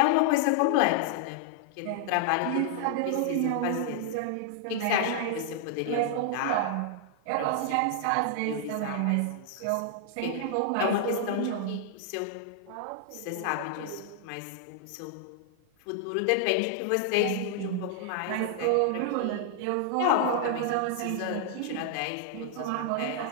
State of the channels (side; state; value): both; different; correlation -0.01